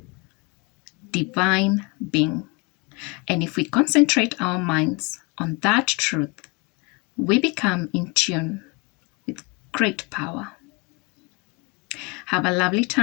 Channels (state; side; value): quieter; right; 27.1 dB